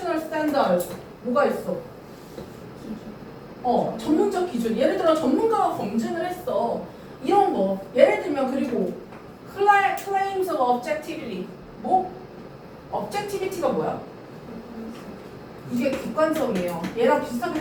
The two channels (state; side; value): identical; both; correlation 1.00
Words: standards 뭐가 있어? 전문적 기준. 예를 들어 전문가가 검증을 했어. 이런 거. 예를 들면 그리고 claims of objectivity. 뭐? objectivity가 뭐야? 이게 객관성이에요. 얘랑 비슷하게